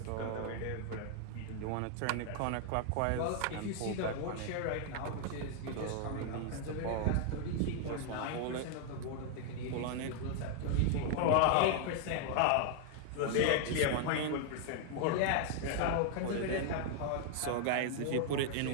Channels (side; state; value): both; different; correlation 0.00